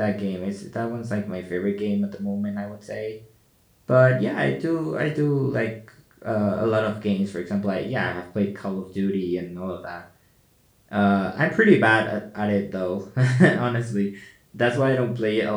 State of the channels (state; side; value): identical; both; correlation 1.00